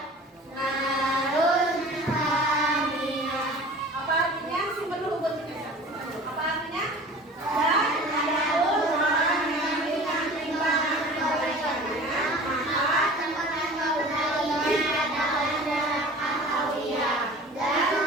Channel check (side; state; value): both; normal; correlation 0.42